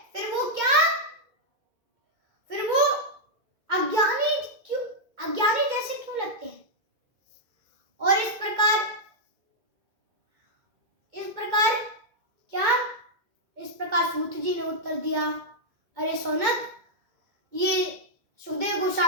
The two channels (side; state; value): left; late; 2.2 ms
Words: फिर वो अज्ञानी जैसे क्यों लगते हैं? और इस प्रकार सूत जी ने उत्तर दिया, अरे शौनक, ये सुखदेव